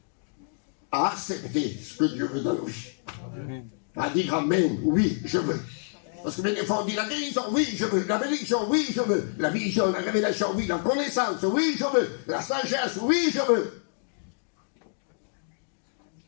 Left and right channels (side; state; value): right; silent; digital silence